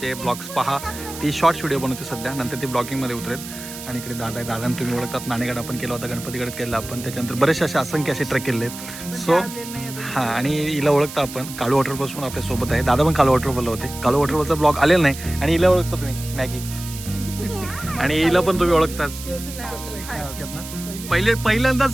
ब्लॉग्स पहा. ती शॉर्ट्स व्हिडिओ बनवते सध्या, नंतर ती ब्लॉगिंगमध्ये उतरेल. आणि इकडे दादा आहे, दादांना तुम्ही ओळखतात. नाणेगड आपण केला होता, गणपतीगड केला आपण, त्याच्यानंतर बरेचसे असे असंख्य असे ट्रेक केले आहेत. सो हां, आणि हिला ओळखता आपण. काळू वॉटरफॉल्स आपल्या सोबत आहे. दादा पण काळू वॉटरफॉलला होते. काळू वॉटरफॉलचा ब्लॉग आलेला नाही. आणि हिला ओळखता तुम्ही, मॅगी. आणि हिला पण तुम्ही ओळखताच ना.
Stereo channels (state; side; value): noise; right; hiss, 12 dB below the sound